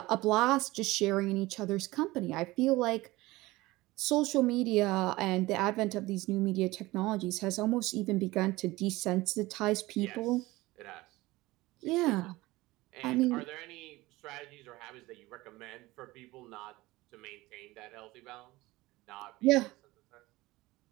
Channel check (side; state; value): left; quieter; 19.6 dB